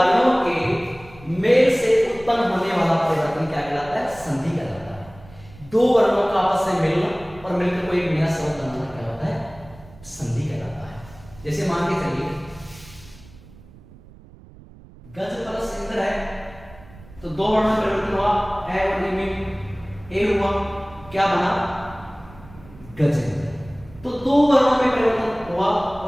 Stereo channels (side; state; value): right; noise; rumble, 21 dB below the sound